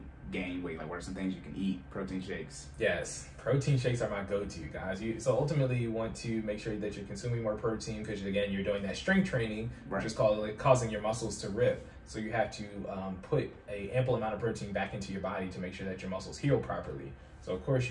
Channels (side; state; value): both; identical; correlation 1.00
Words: gain weight? Like, what are some things you can eat? Protein shakes. Yes, protein shakes are my go-to, guys. So ultimately, you want to make sure that you're consuming more protein because, again, you're doing that strength training, which is causing your muscles to rip. So you have to put an ample amount of protein back into your body to make sure that your muscles heal properly. So of course